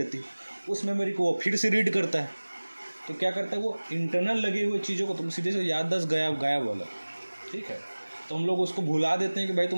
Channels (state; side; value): inverted; both; correlation -1.00